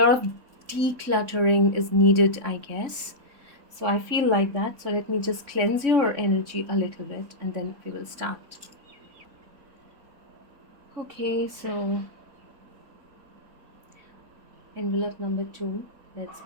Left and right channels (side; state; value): left; late; 3.6 ms